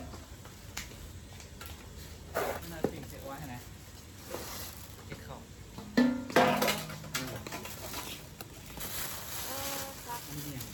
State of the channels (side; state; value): both; identical; correlation 1.00